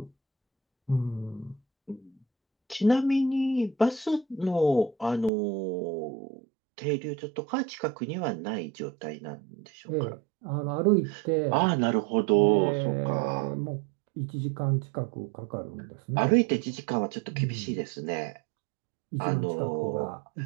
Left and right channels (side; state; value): left; drops out; at 5.3 s